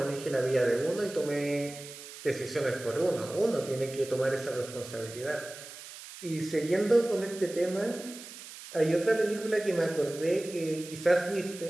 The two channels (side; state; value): right; noise; hiss, 14 dB below the sound